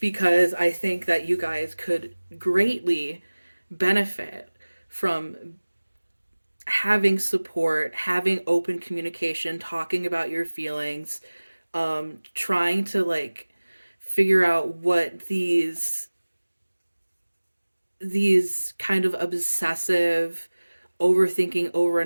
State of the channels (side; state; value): both; inverted; correlation -1.00